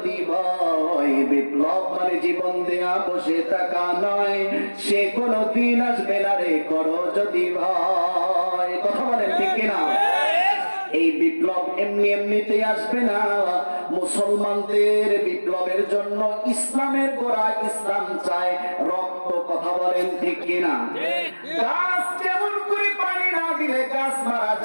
ভয়। বিপ্লব মানে জীবন দেয়া, বসে থাকা নয়, সে কোনো দিন আসবে না রে করো যদি ভয়। কথা বলেন ঠিক কিনা? এই বিপ্লব এমনি এমনিতে আসবে না। মুসলমানদের বিপ্লবের জন্য ইসলামের গোড়া, ইসলাম চায় রক্ত। কথা বলেন ঠিক কিনা? গাছ যেমন করে পানি না দিলে গাছ মারা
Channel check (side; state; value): both; inverted; correlation -1.00